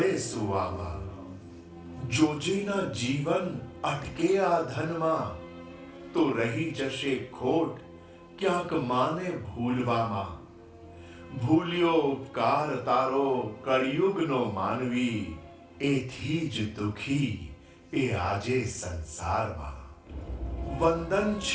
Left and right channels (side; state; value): both; identical; correlation 1.00